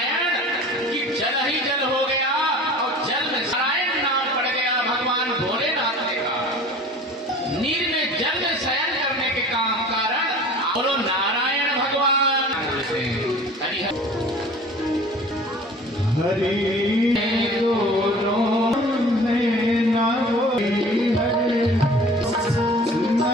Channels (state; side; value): normal; both; correlation 0.44